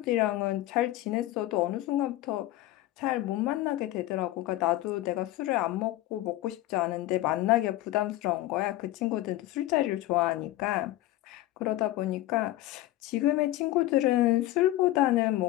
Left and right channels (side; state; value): right; quieter; 15.7 dB